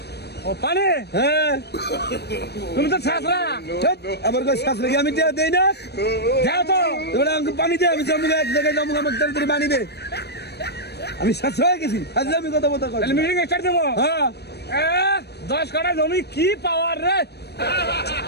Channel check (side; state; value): right; late; 0.48 ms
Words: ও পানি, হ্যাঁ তুমি তো ছাত্রা, আবার কই শাস্ত্রে কি আমি দেই না? যাও তো। এবারে আমাকে পানি দে, আমি জমুক এক জায়গায় জমুক, আমাকে তাড়াতাড়ি পানি দে। আমি শাস্ত্র হয়ে গেছি, আজকে আমি কথা বলতে তাহলে মিটিং স্টার্ট দেবো। হ্যাঁ 10 কাঠা জমি কি পাওয়ার রে।